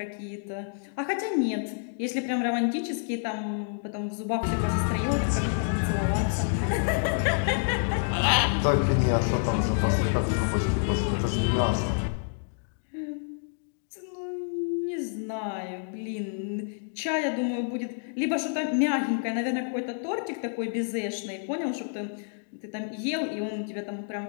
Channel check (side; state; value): right; silent; digital silence